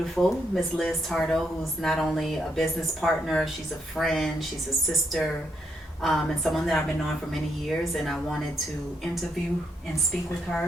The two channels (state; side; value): normal; both; correlation 0.78